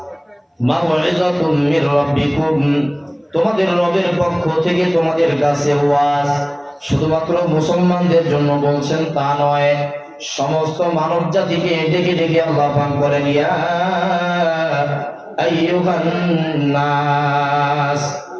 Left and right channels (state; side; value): identical; both; correlation 1.00